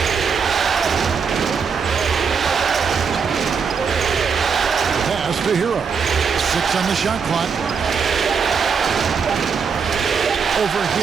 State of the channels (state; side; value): quieter; left; 6.0 dB